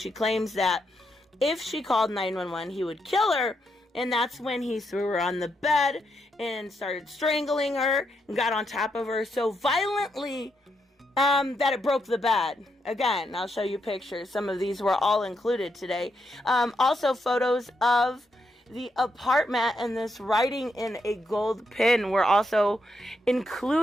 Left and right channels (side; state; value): both; normal; correlation 0.81